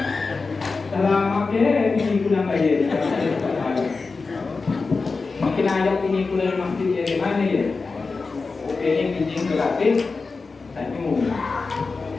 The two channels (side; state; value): right; quieter; 4.2 dB